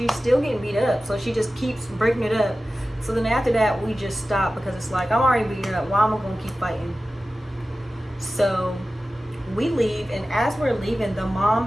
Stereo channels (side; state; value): both; normal; correlation 0.95